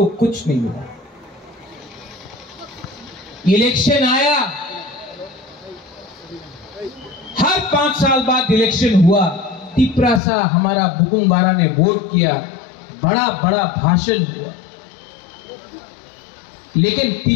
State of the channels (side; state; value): right; drops out; at 10.2 s